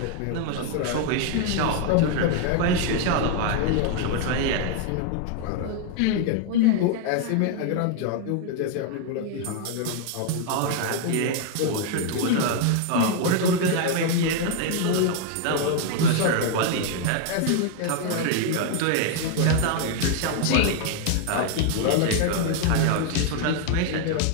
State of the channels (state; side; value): different; both; correlation 0.00